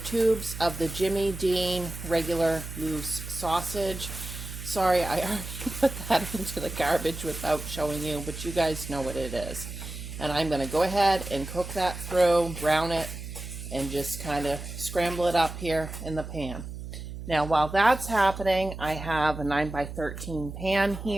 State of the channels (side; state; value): right; noise; hum, 9 dB below the sound